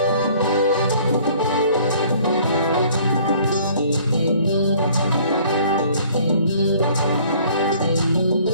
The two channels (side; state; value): both; inverted; correlation -0.56